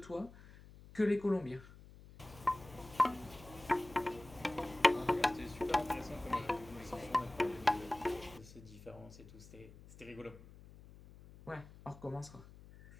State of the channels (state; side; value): noise; left; hum, 19 dB below the sound